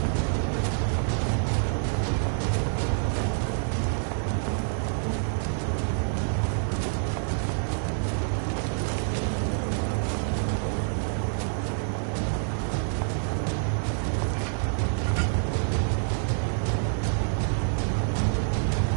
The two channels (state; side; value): silent; left; digital silence